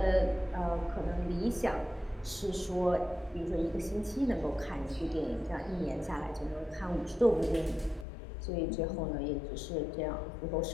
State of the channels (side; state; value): right; drops out; at 8.1 s